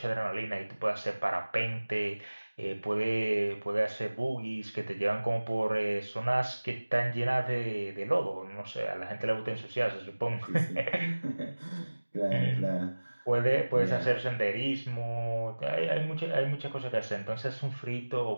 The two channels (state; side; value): inverted; both; correlation -1.00